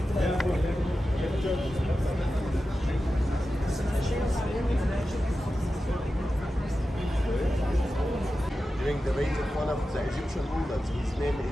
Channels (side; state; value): both; normal; correlation 0.92